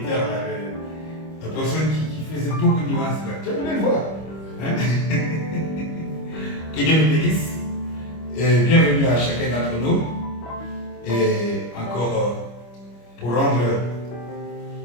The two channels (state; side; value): late; right; 25 ms